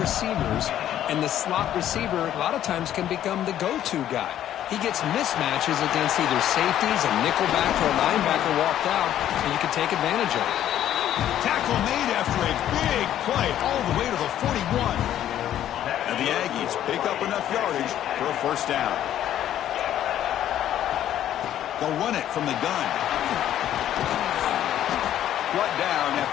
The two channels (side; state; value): right; quieter; 11.5 dB